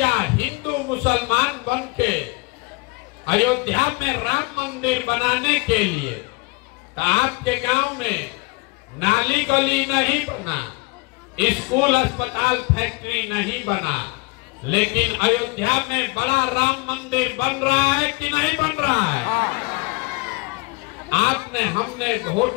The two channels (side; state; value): right; quieter; 26.7 dB